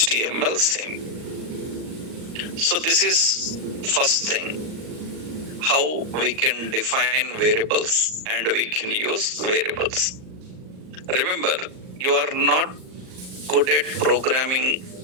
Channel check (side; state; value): left; late; 38 ms